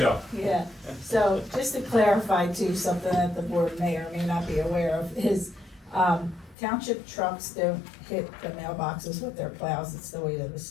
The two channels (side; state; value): right; drops out; at 6.6 s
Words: Yeah, so just to clarify too, something that the board may or may not be aware of is, township trucks don't hit the mailboxes with their plows. It's the weight of the